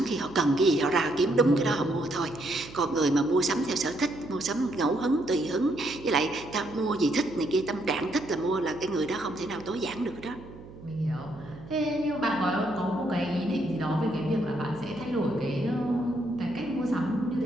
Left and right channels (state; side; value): noise; right; hum, 17 dB below the sound